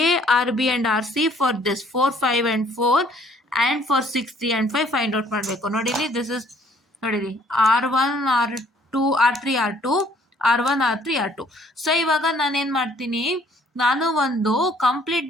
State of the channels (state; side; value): normal; both; correlation 0.60